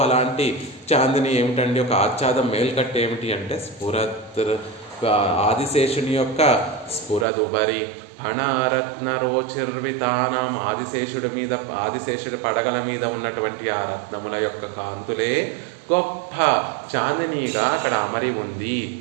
అలాంటి చాందిని ఏమిటండి? ఒక ఆచ్ఛాదం మేల్కట్టు ఏమిటి అంటే స్ఫురత్ ఆదిశేషుని యొక్క స్ఫురదుబరి ఫణారత్న రోచిర్వితానం ఆదిశేషుడి పడగల మీద ఉన్నటువంటి ఆ రత్నముల యొక్క కాంతులే గొప్ప చాందినిగా అక్కడ అమరి ఉంది.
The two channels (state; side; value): drops out; left; at 7.2 s